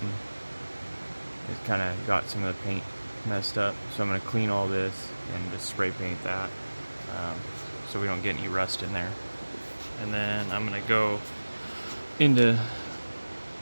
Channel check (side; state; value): both; inverted; correlation -1.00